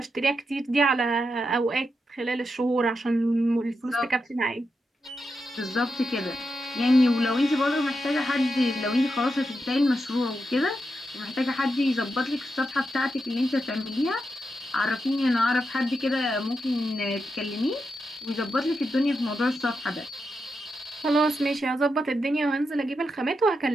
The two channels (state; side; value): normal; both; correlation 0.86